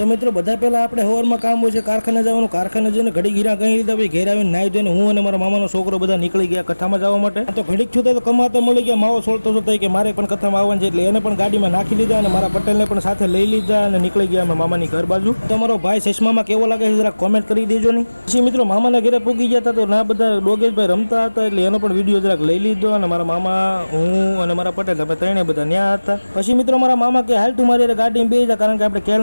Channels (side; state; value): both; inverted; correlation -1.00